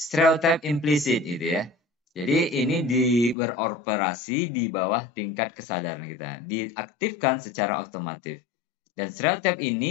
implisit gitu ya. Jadi ini beroperasi di bawah tingkat kesadaran kita. Diaktifkan secara otomatis. Dan stereotip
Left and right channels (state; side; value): drops out; right; at 3.4 s